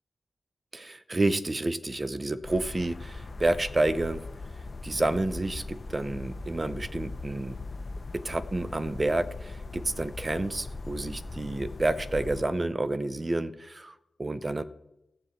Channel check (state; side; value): normal; both; correlation 0.97